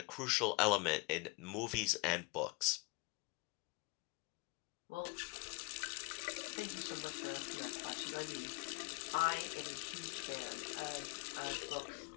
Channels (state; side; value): quieter; right; 27.6 dB